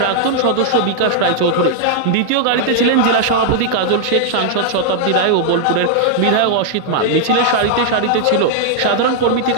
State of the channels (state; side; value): different; both; correlation -0.01